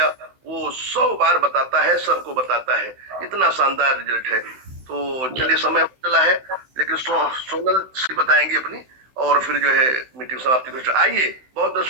वो 100 बार बताता है, सबको बताता है। इतना शानदार रिजल्ट है। तो चलिए समय चला है, लेकिन सोनल से बताएंगे अपनी, और फिर जो है मीटिंग समाप्ति को। आइए, बहुत बहुत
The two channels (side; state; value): left; late; 16 ms